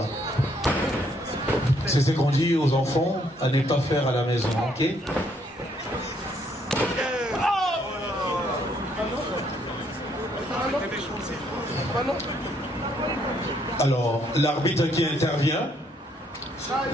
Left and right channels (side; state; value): both; normal; correlation 0.69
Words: C'est ce qu'on dit aux enfants à ne pas faire à la maison, ok? Alors, l'arbitre qui intervient